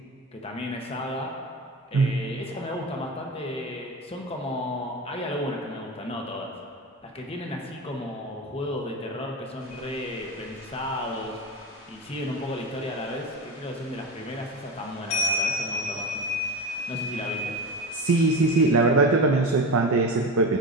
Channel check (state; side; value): normal; both; correlation 0.24